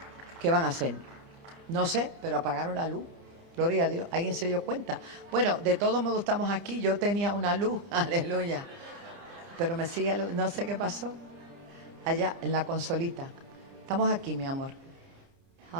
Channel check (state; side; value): late; left; 24 ms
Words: ¿Qué van a hacer? No sé, pero apagaron la luz. Gloria a Dios. ¿Alguien se dio cuenta? Bueno, de todos modos estamos aquí. Yo tenía una luz, aleluya. Pero me sigue, no sé qué pasó. Allá en la consolita. Estamos aquí, mi amor.